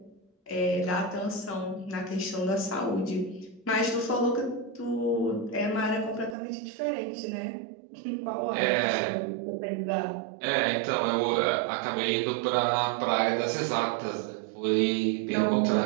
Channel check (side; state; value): left; drops out; at 6.4 s